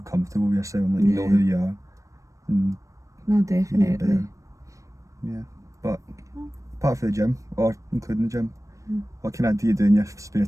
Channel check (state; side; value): late; left; 0.16 ms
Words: comfortable with yourself, like you know who you are. And no, definitely. Yeah, but apart from the gym, or including the gym, what kind of do you do in your spare